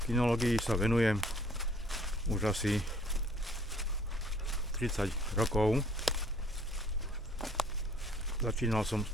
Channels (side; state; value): both; normal; correlation 0.58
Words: Kinológii sa venujem už asi 30 rokov. Začínal som s